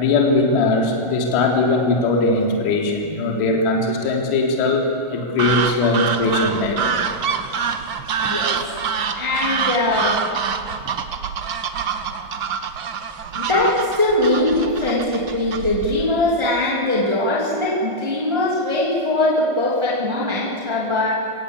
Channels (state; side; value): late; left; 1.5 ms